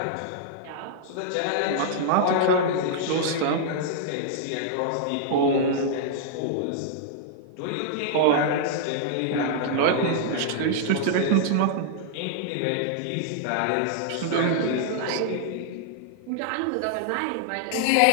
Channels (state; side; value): different; both; correlation -0.01